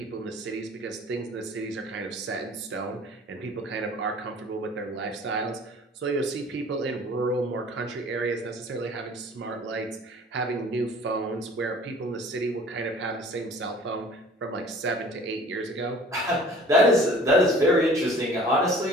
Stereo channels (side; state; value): both; normal; correlation 0.49